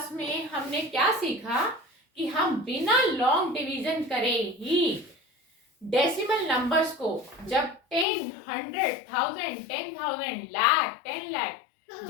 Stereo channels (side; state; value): right; drops out; at 8.1 s